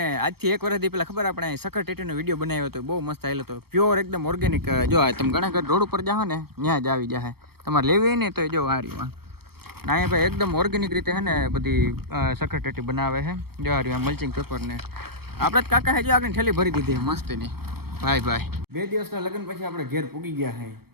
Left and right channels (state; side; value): late; left; 0.96 ms